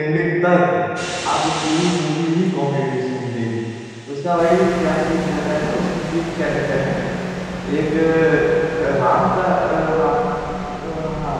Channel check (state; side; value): identical; both; correlation 1.00